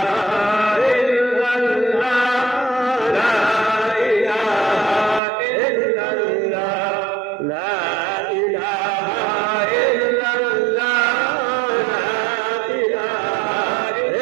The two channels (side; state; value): left; drops out; at 5.2 s